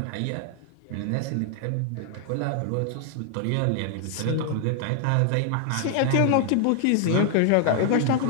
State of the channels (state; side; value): different; both; correlation 0.00